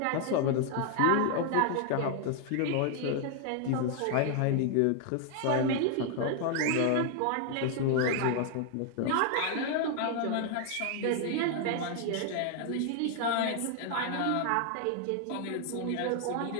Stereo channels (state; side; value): different; both; correlation 0.00